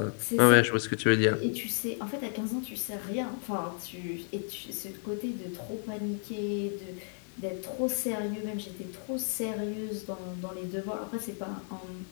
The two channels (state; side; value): silent; right; 56 dB below the other